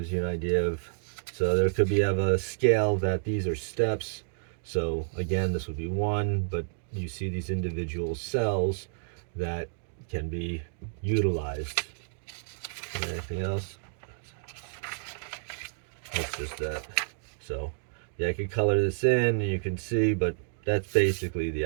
you an idea of, so there could be of a scale that these are steps. So again, this would be one, but you see these individual cells that can be utilized. Anything else? That's just that. So yeah, I can color this in and you can see, but that's basically the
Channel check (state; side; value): silent; left; digital silence